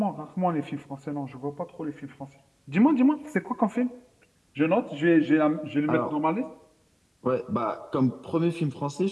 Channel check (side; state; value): both; identical; correlation 1.00